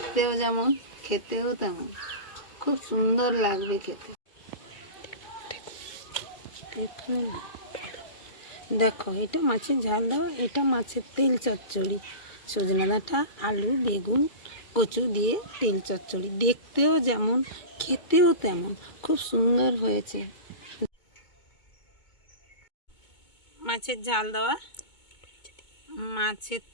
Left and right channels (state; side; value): late; right; 2.2 ms